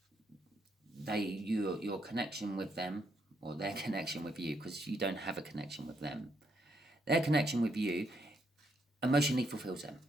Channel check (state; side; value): normal; both; correlation 0.76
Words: Your connection with them, or their connection with you, because you don't have a connection with them. Their connection with you emotionally fulfills them.